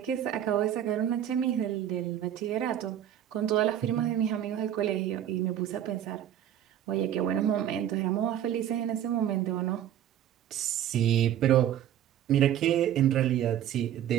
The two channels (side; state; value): left; quieter; 10.9 dB